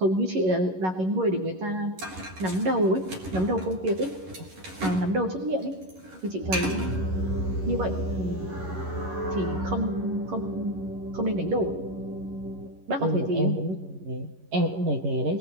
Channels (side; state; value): left; late; 11 ms